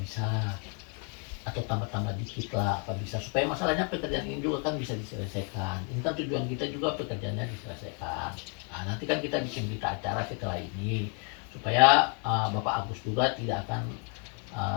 Atau tambah-tambah dikit lah, apa bisa, supaya masalahnya pekerjaan ini juga kan bisa diselesaikan. Ini kan tujuan kita juga pekerjaannya diselesaikan. Nah, nanti kan kita bikin berita acara setelah ini supaya Bapak Agus juga tidak akan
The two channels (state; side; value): quieter; right; 39.3 dB